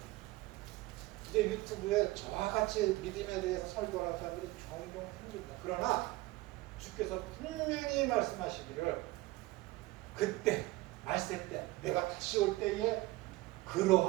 이제 유튜브에 저와 같이 믿음에 대해서 설교하는 사람들이 종종 생깁니다. 그러나 주께서 분명히 말씀하시기를 그때 말세 때 내가 다시 올 때에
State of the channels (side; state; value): left; quieter; 19.5 dB